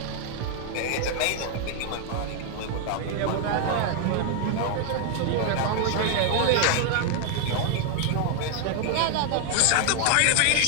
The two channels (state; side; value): different; both; correlation 0.00